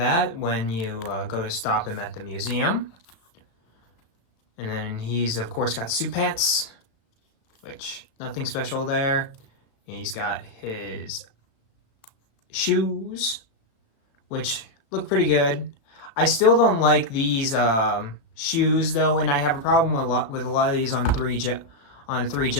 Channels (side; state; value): right; late; 35 ms